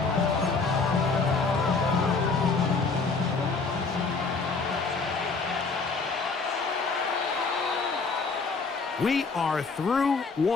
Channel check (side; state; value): right; quieter; 4.3 dB